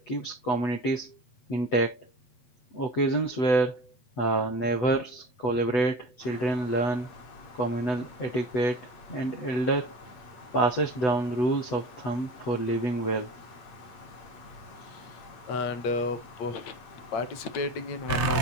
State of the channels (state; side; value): late; right; 8.0 ms